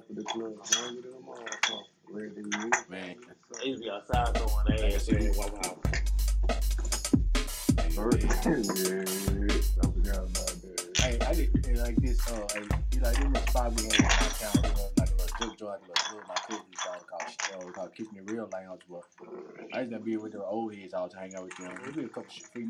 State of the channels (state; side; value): identical; both; correlation 1.00